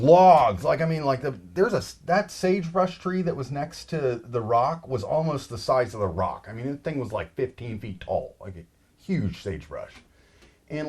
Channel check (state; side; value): identical; both; correlation 1.00